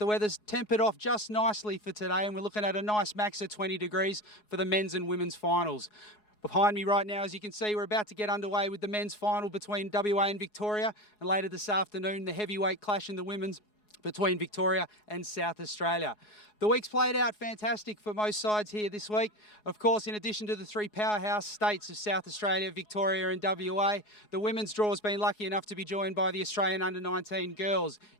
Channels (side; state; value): right; late; 4.8 ms